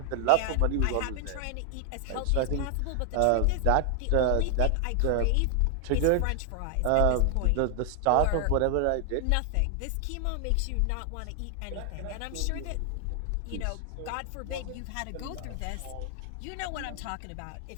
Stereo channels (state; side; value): different; both; correlation 0.00